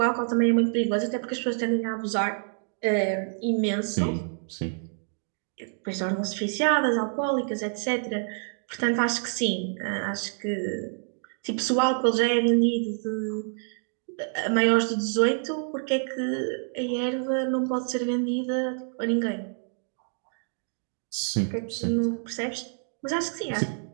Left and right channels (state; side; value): silent; left; digital silence